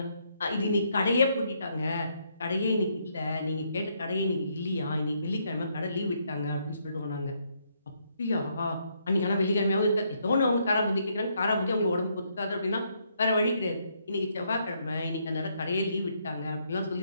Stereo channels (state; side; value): inverted; both; correlation -0.74